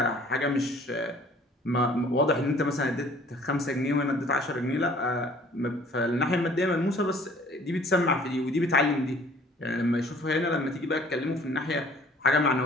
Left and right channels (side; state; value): both; normal; correlation 0.54